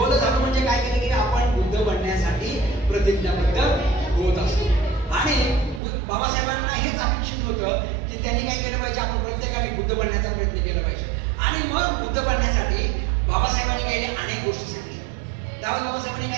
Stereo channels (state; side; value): drops out; left; at 5.8 s